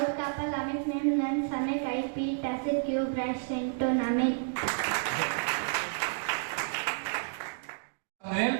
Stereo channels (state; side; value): silent; left; digital silence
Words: Kapal Lamet Nim Nan Same Kai P Tasit Cube Reshite Ton Amen.